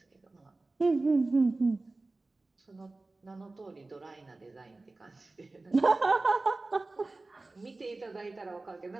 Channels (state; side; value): quieter; left; 3.2 dB